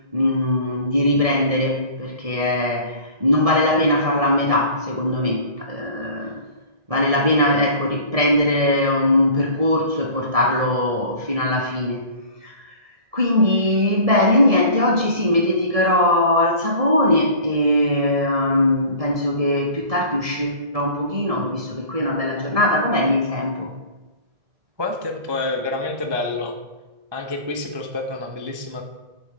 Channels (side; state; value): left; late; 1.7 ms